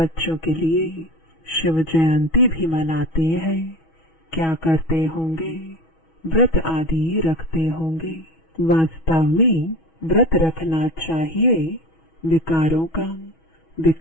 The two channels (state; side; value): late; right; 6.2 ms